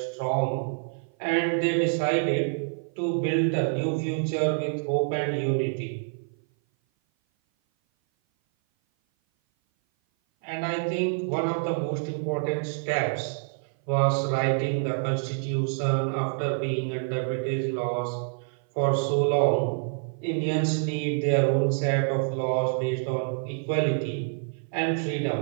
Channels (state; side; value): silent; left; 57 dB below the other